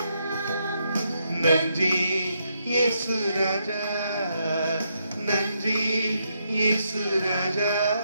நன்றி இயேசு ராஜா, நன்றி இயேசு ராஜா,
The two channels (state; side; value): inverted; both; correlation -0.78